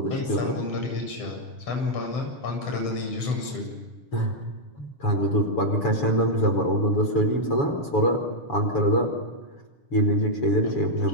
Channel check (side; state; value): right; late; 7.0 ms